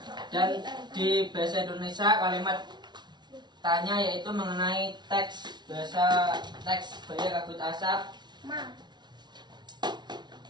Dan di bahasa Indonesia kalimat faktanya yaitu mengenai teks bahasa teks Baya Kabut Asap, Ma.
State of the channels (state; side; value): late; left; 0.21 ms